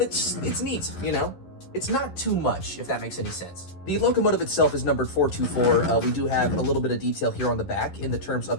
it's neat, you know? It's not too much, if that makes any sense. The locomotive itself is numbered 424. We do have a little bit of detail here on the back in the terms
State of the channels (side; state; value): right; late; 11 ms